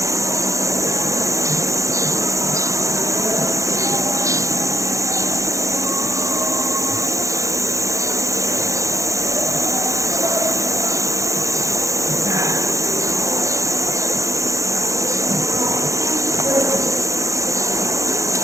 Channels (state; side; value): late; left; 0.15 ms